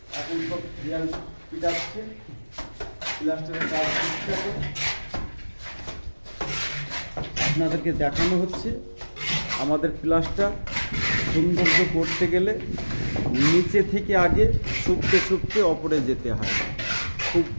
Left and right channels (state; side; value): inverted; both; correlation -1.00